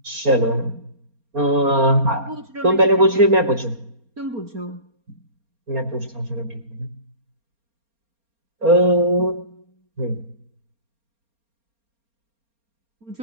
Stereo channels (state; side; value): late; left; 4.3 ms